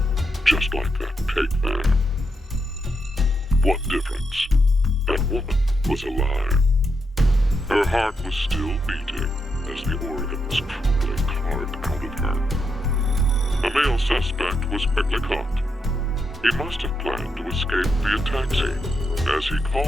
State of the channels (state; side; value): normal; both; correlation 0.83